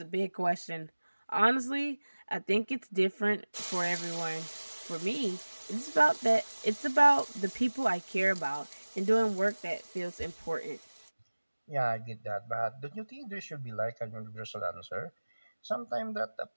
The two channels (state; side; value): inverted; both; correlation -1.00